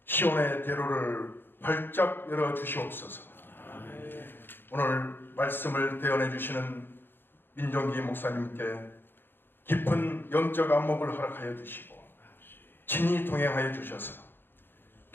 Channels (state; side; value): late; right; 0.099 ms